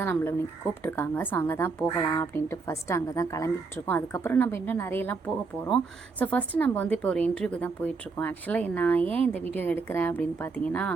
நம்மளை இன்றைக்கி கூப்பிட்ருக்காங்க. ஸோ அங்கே தான் போகலாம் அப்படின்ட்டு ஃபஸ்ட்டு அங்கே தான் கிளம்பிகிட்ருக்கோம். அதுக்கப்புறம் நம்ம இன்னும் நிறையலாம் போக போகிறோம். ஸோ ஃபஸ்ட்டு நம்ம வந்து இப்போ ஒரு இன்டர்வியூக்கு தான் போயிட்டுருக்கோம். ஆக்சுவலாக நான் ஏன் இந்த வீடியோ எடுக்கிறேன் அப்படின்னு பார்த்தீங்கன்னா,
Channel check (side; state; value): left; quieter; 4.4 dB